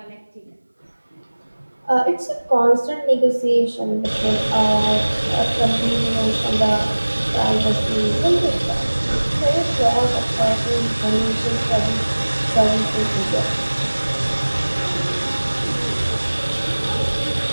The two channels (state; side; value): inverted; both; correlation -1.00